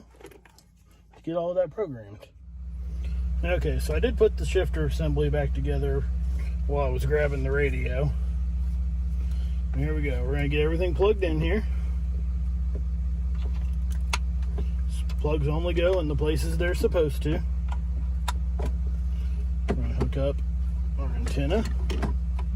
to get all of that programmed. Okay, so I did put the shifter assembly back together while I was grabbing the radio. Here we go. We're going to get everything plugged in here. Plugs only go in the places they're supposed to. We're going to hook up our antenna.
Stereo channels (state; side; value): identical; both; correlation 1.00